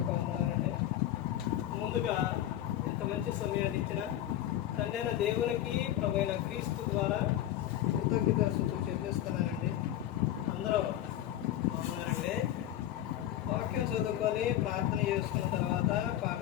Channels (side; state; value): right; quieter; 12.4 dB